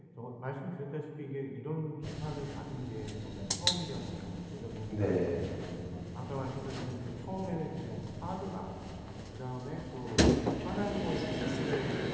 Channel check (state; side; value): identical; both; correlation 1.00